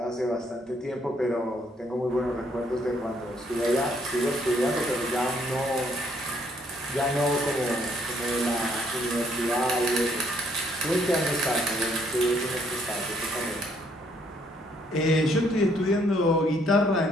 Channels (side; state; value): both; normal; correlation 0.67